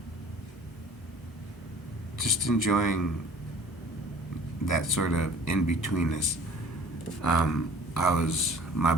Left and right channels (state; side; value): normal; both; correlation 0.50